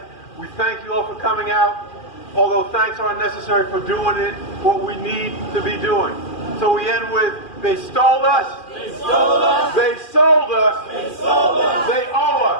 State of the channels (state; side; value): late; right; 2.4 ms